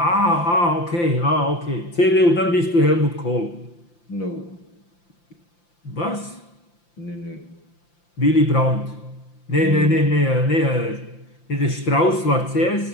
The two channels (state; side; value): late; right; 5.8 ms